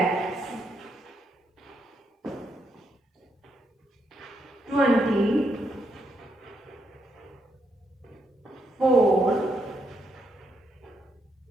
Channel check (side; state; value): both; normal; correlation 0.78